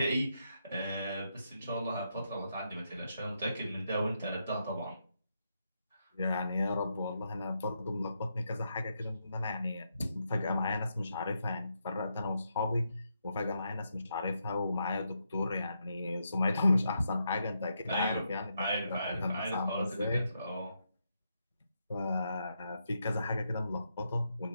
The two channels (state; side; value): inverted; both; correlation -0.81